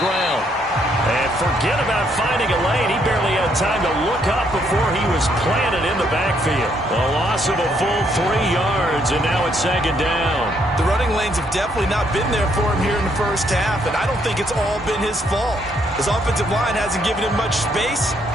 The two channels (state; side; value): normal; both; correlation 0.72